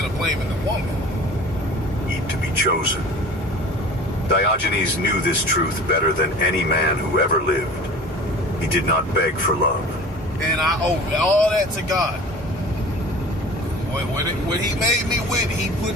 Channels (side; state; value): both; normal; correlation 0.41